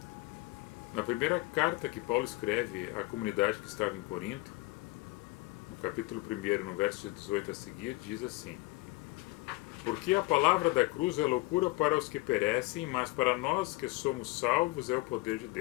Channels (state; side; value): quieter; right; 22.1 dB